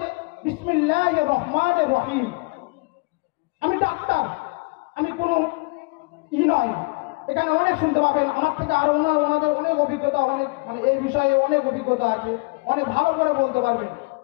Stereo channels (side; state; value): right; quieter; 28.8 dB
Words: যে বিসমিল্লাহির রহমানির রহিম। আমি ডাক্তার, আমি কোনো নয়, এখানে অনেক শুনতে পাবেন আমার থেকে, আরো ওনাদের অনেক অভিজ্ঞতা, অনেক মানে এই বিষয়ে অনেক অভিজ্ঞতা আছে, অনেক ভালো করে বলতে পারবেন।